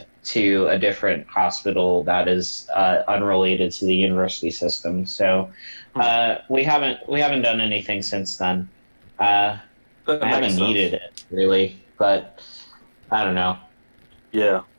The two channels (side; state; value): both; inverted; correlation -1.00